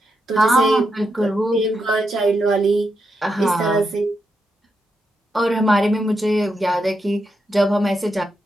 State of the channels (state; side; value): normal; both; correlation 0.84